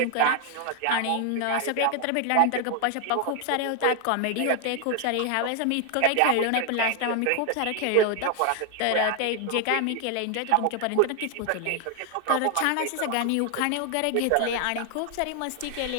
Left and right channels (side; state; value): both; different; correlation 0.00